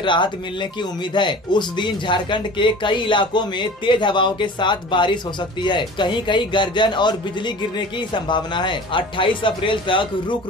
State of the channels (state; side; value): normal; both; correlation 0.40